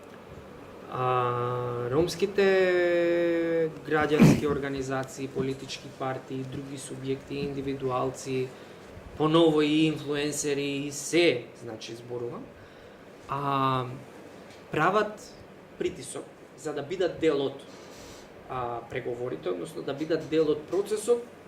ромските граѓански организации, политички партии, други субјекти, индивидуалци, поново и инфлуенсери, и се, значи, зборувам, прават притисок за да бидат дел од преговорите, односно да бидат дел од процесот,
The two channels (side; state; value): both; identical; correlation 1.00